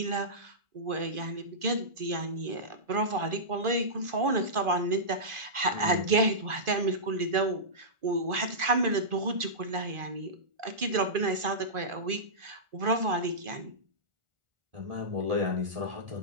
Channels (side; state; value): left; late; 1.4 ms